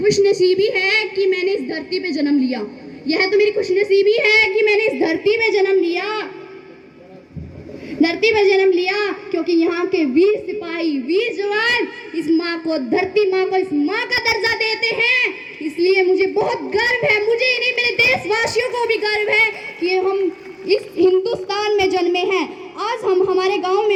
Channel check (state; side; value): identical; both; correlation 1.00